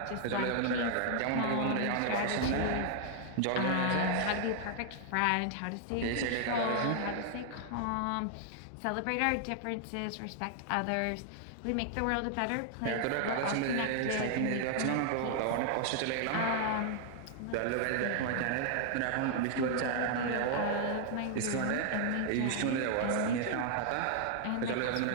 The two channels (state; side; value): different; both; correlation 0.00